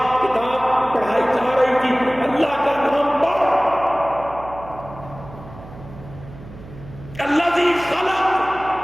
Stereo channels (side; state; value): right; noise; hum, 17 dB below the sound